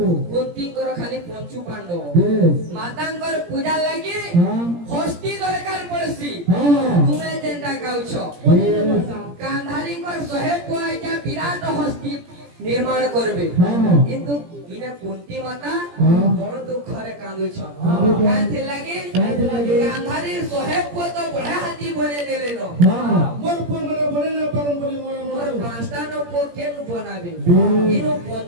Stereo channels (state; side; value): late; left; 17 ms